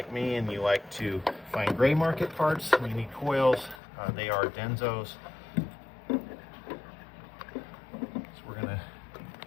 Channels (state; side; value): drops out; right; at 3.8 s